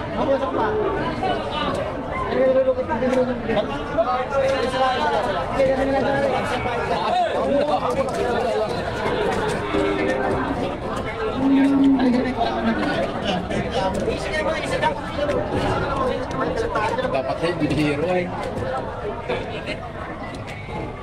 Dapat kayo bihiro eh.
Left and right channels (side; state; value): both; identical; correlation 1.00